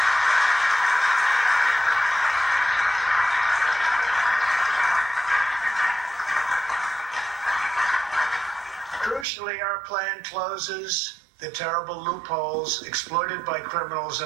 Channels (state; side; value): drops out; left; at 9.2 s